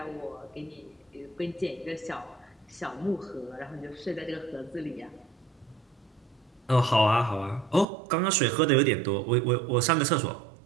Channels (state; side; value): drops out; left; at 7.9 s